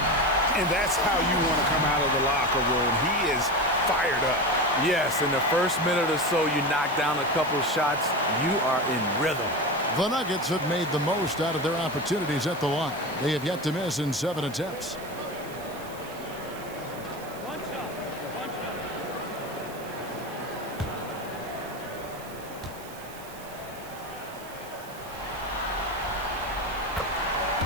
And that's how you want to come out of the locker room. He is fired up. Yes, in the first minute or so, you knock down a couple shots, you are in rhythm. The Nuggets have made the most out of their opportunities at the line. They have yet to miss in 7 attempts.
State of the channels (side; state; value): right; noise; hiss, 19 dB below the sound